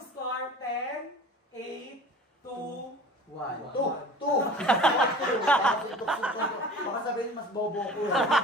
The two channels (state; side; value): normal; both; correlation 0.40